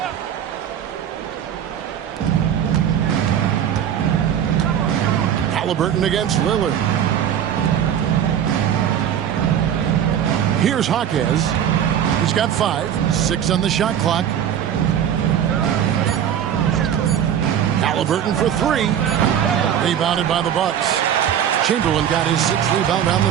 Halliburton against Lillard. Here's Hawkes. He's got 5, 6 on the shot clock. Halliburton for 3. Rebounded by the Bucks. Chamberlain got his 6th rebound on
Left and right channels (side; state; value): left; quieter; 9.5 dB